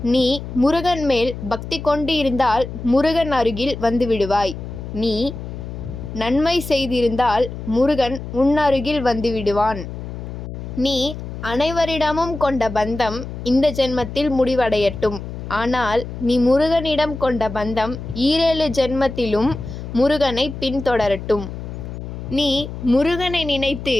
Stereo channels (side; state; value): left; noise; hum, 9 dB below the sound